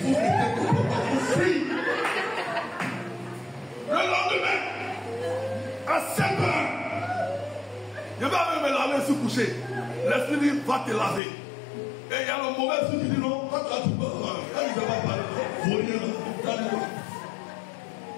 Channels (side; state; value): right; drops out; at 11.2 s